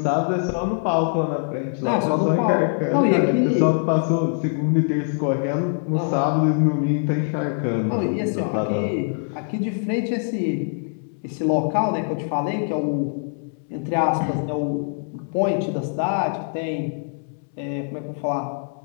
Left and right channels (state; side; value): silent; right; 63 dB below the other